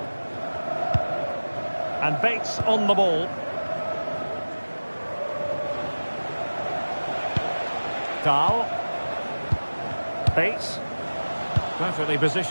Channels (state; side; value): inverted; both; correlation -1.00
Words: And Bates on the ball. Dahl. Bates. Perfectly